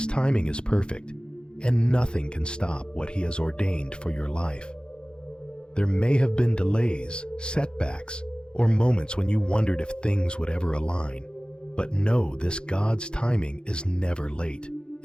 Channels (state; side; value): late; right; 0.050 ms